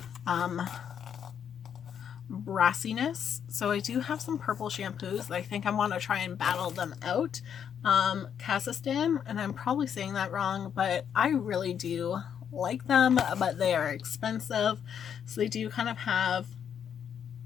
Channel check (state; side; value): quieter; right; 8.3 dB